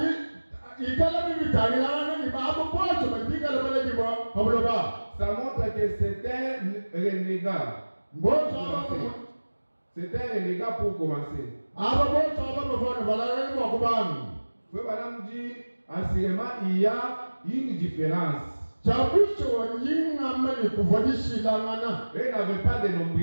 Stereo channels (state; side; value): inverted; both; correlation -1.00